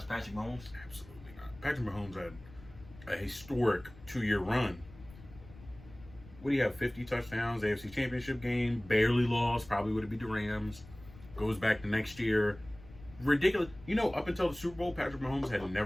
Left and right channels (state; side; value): noise; left; rumble, 20 dB below the sound